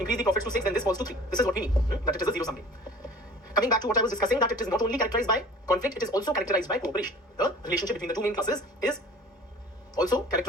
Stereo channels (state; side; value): normal; both; correlation 0.45